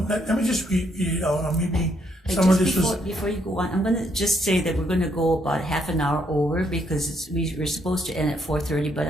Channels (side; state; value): both; normal; correlation 0.73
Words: let me just read it out. Maybe some of this before you go on, I'm gonna just say that we're gonna go about half an hour over, because we're supposed to end at 4:30, but